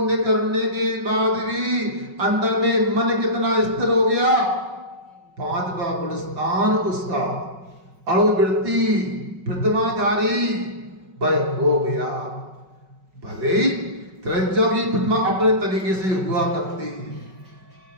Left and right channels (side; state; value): left; late; 5.4 ms